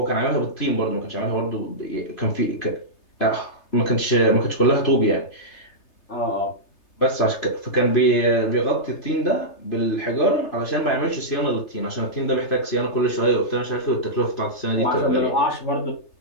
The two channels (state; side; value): late; right; 3.3 ms